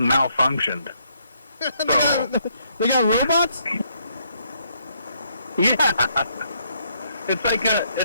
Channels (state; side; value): inverted; both; correlation -0.71